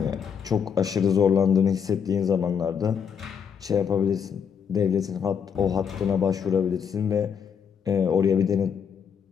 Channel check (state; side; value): quieter; right; 7.2 dB